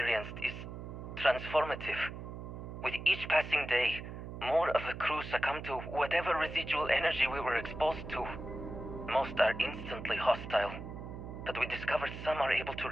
is transformative. With each passing day, more of the crew succumb to whatever residual energy we were exposed to. Most are instantly hostile, but we discovered some are able to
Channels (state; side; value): noise; right; hum, 9 dB below the sound